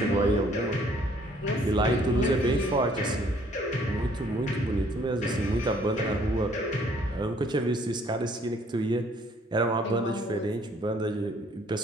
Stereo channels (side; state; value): both; normal; correlation 0.61